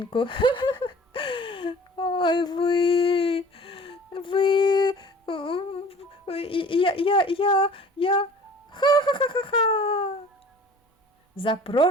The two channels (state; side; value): normal; both; correlation 0.46